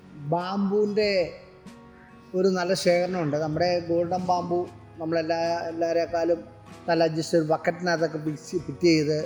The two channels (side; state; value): both; identical; correlation 1.00